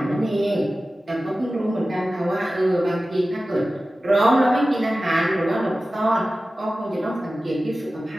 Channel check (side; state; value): both; normal; correlation 0.95